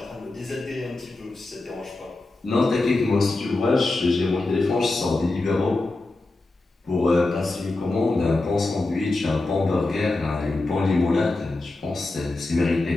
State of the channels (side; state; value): right; quieter; 3.1 dB